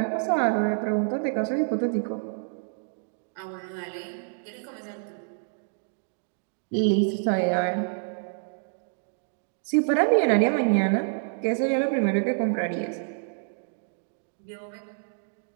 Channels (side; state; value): left; silent; digital silence